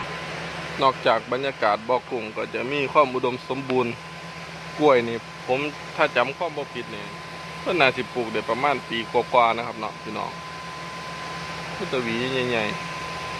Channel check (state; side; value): identical; both; correlation 1.00